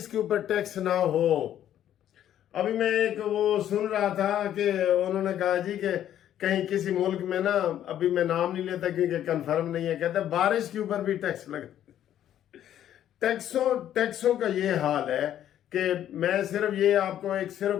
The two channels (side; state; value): right; quieter; 11.1 dB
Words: کے اوپر ٹیکس نہ ہو. ابھی میں ایک وہ سن رہا تھا کہ انہوں نے کہا جی کہ کہیں کسی ملک میں نا، ابھی میں نام نہیں لیتا کیونکہ کنفرم نہیں ہے، کہتے ہیں بارش کے اوپر بھی ٹیکس لگا. ٹیکسوں کا یہ حال ہے کہ میں صرف یہ آپ کو صرف